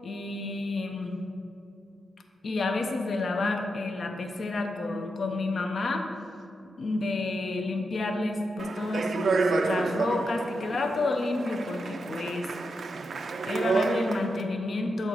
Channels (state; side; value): normal; both; correlation 0.85